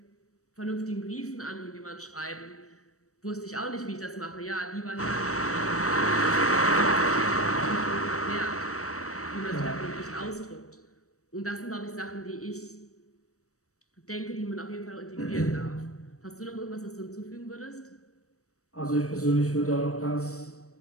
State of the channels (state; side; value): late; right; 0.65 ms